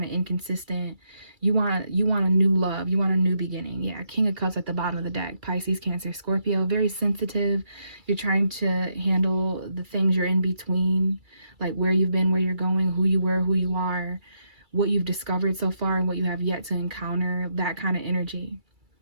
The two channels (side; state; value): left; late; 2.3 ms